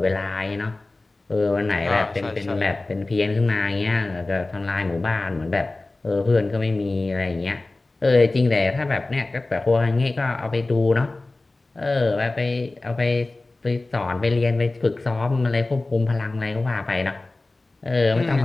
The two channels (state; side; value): quieter; right; 3.1 dB